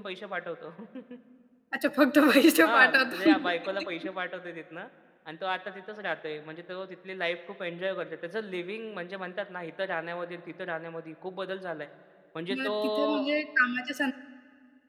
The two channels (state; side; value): identical; both; correlation 1.00